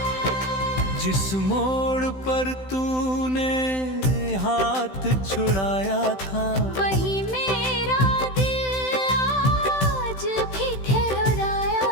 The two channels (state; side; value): late; right; 16 ms